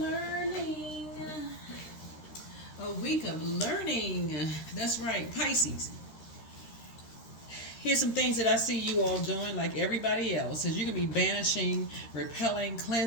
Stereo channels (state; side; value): late; right; 13 ms